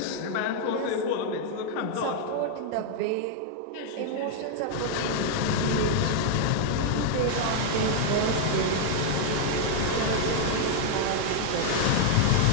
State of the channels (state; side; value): different; both; correlation 0.00